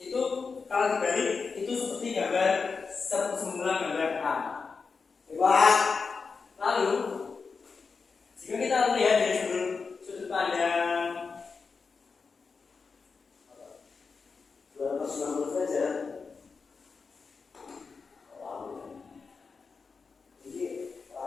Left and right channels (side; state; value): right; quieter; 4.9 dB